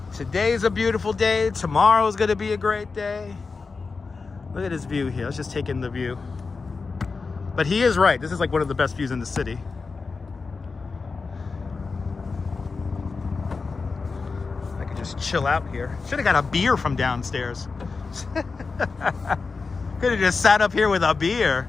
Today's a beautiful day. Tomorrow's gonna be a great day. Look at this view here. Let's just take in the view. But he is right. This is like one of the best views in the city. I could just chill out here. Should have got a beer from downstairs. Could have just sat up here with a beer.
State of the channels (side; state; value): right; quieter; 4.4 dB